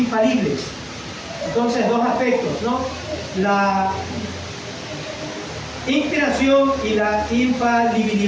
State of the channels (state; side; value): identical; both; correlation 1.00